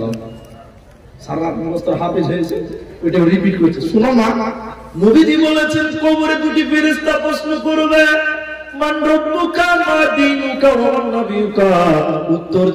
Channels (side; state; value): both; identical; correlation 1.00